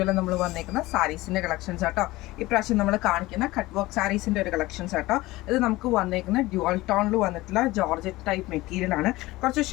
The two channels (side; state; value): right; quieter; 19.1 dB